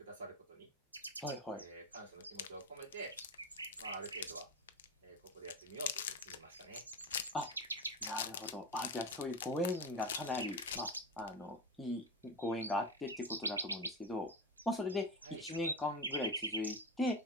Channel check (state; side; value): normal; both; correlation 0.22